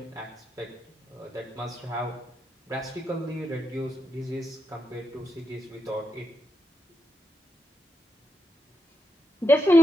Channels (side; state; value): both; normal; correlation 0.84